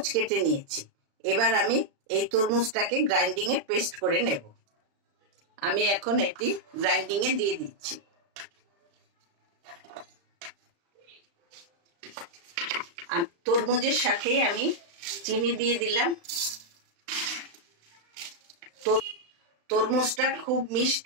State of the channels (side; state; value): left; late; 35 ms